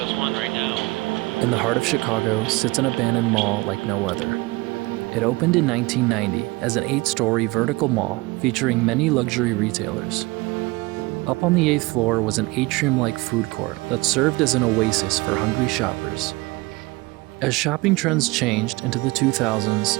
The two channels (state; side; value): quieter; left; 23.1 dB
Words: one right now. In the heart of Chicago sits an abandoned mall like no other. It opened in 1990 as an 8-story vertical mall featuring many luxury retailers. Up on the 8th floor was an atrium-like food court that served as an oasis for hungry shoppers. As shopping trends changed into the 2000s,